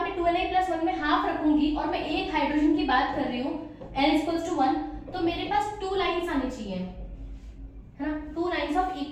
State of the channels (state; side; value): identical; both; correlation 1.00